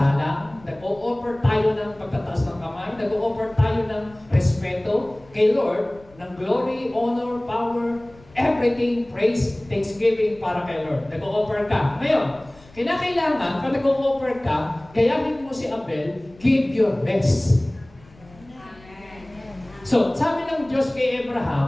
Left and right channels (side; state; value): left; noise; rumble, 25 dB below the sound